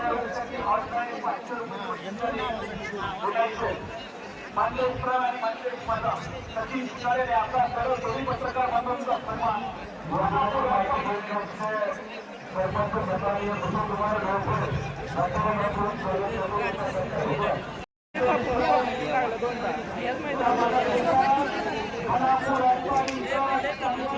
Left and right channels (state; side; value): identical; both; correlation 1.00